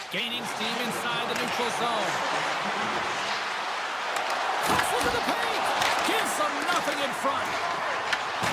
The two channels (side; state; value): both; identical; correlation 1.00